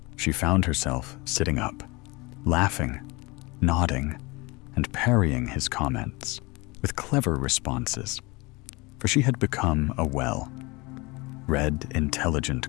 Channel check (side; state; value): right; quieter; 25.1 dB